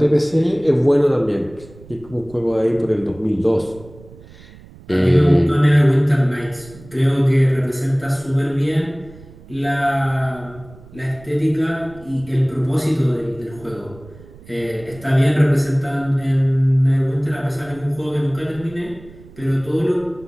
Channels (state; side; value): noise; right; rumble, 21 dB below the sound